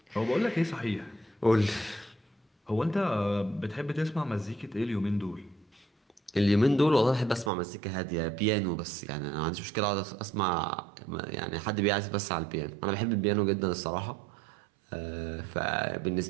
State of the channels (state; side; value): drops out; left; at 7.5 s